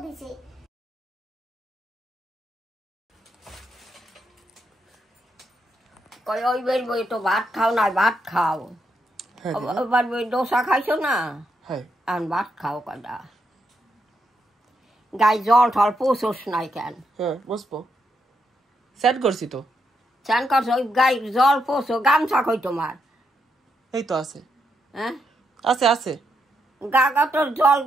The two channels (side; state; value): both; normal; correlation 0.80